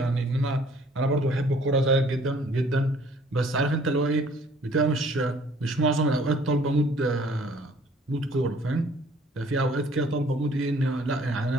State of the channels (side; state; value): both; normal; correlation 0.57